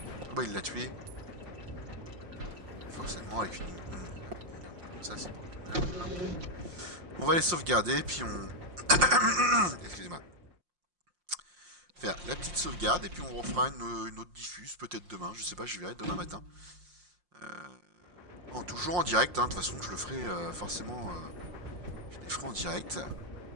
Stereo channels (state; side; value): late; left; 5.6 ms